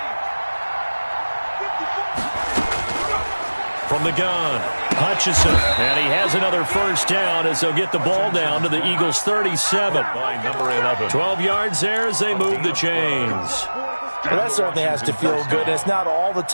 From the gun, Hutchinson. And he has another first down as they'll get the ball down to the Eagles' 37. By number 11. 12 yards there as they move the chains. Well, that certainly has to feel good. And it's not all the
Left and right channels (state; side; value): inverted; both; correlation -1.00